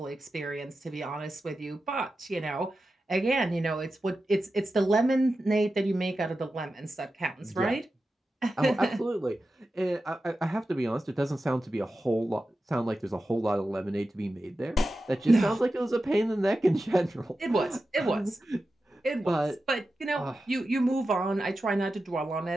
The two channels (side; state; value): both; normal; correlation 0.92